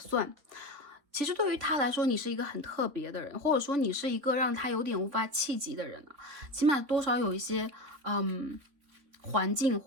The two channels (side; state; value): left; late; 3.7 ms